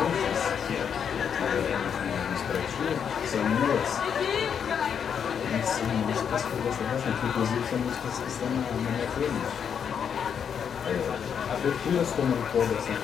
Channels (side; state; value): right; quieter; 7.6 dB